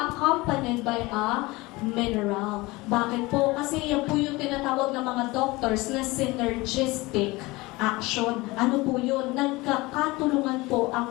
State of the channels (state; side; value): quieter; right; 22.0 dB